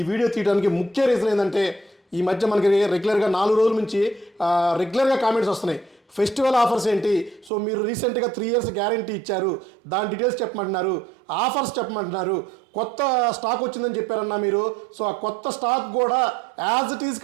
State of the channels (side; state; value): left; drops out; at 7.5 s